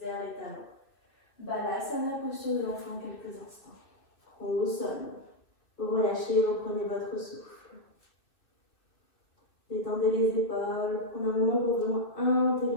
vers les talons. Balasana, posture de l'enfant quelques instants. Front au sol. Vous relâchez, reprenez votre souffle. Détendez les épaules, prenez un moment pour vraiment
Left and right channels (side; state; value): right; late; 2.4 ms